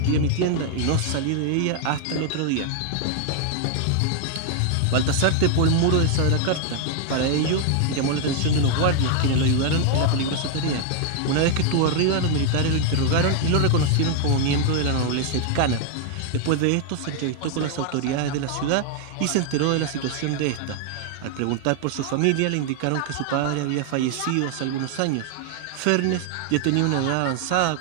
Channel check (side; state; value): both; different; correlation 0.00